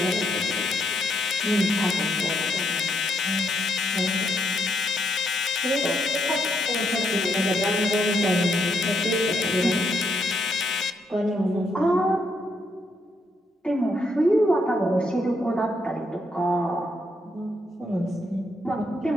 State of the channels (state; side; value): normal; both; correlation 0.76